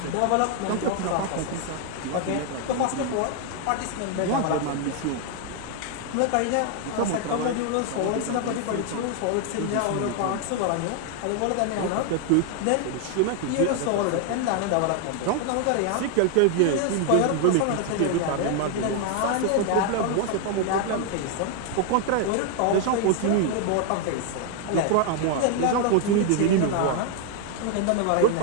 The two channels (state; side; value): different; both; correlation 0.00